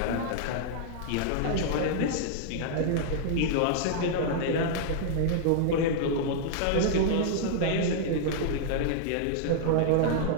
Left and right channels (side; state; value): both; different; correlation -0.01